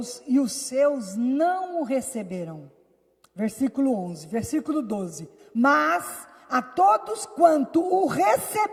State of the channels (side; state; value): both; identical; correlation 1.00